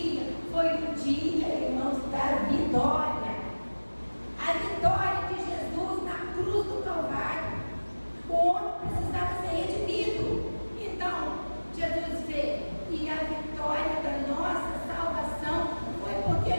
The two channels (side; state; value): both; inverted; correlation -1.00